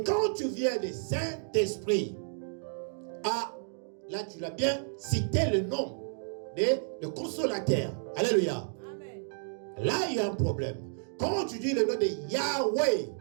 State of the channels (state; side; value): silent; left; digital silence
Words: quand tu viens de Saint-Esprit, ah, là tu l'as bien cité le nom de consolateur. Alléluia. Amen. Là il y a un problème. Quand tu dis le nom de Yahweh,